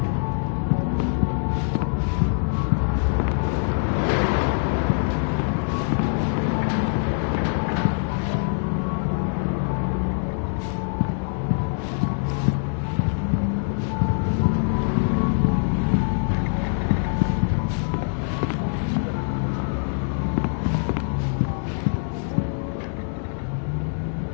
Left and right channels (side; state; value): right; silent; 63 dB below the other